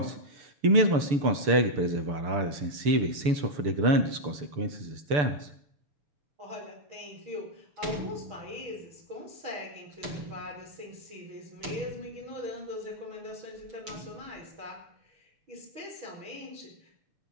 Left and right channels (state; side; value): late; left; 6.8 ms